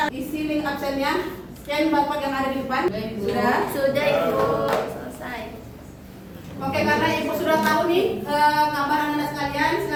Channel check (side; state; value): both; identical; correlation 1.00